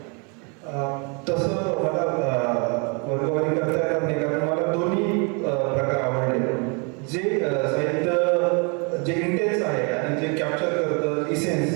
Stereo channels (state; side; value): quieter; left; 34.6 dB